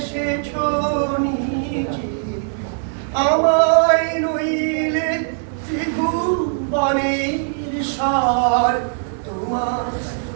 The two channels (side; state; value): left; silent; digital silence